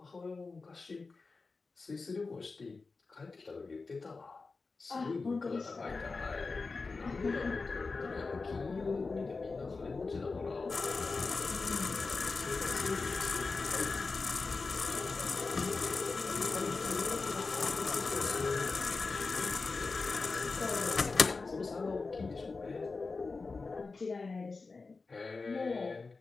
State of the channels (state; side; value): quieter; right; 4.1 dB